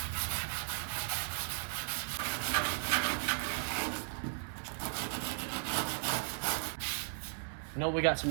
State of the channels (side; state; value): left; silent; 54 dB below the other